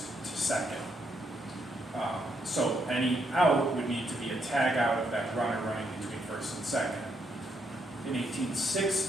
to second. So any out would need to be a tag out of that runner running between first and second. In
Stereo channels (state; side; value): normal; both; correlation 0.77